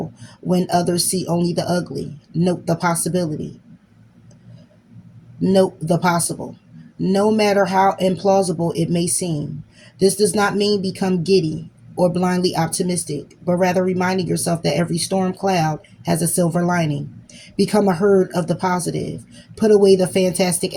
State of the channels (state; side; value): identical; both; correlation 1.00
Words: when others see only the ugly. Note the possibility. Note the possible. No matter how implausible it may seem. This does not mean become giddy or blindly optimistic, but rather reminding yourself that every storm cloud has a silver lining. Become a herd of the positive. Put away the fantastic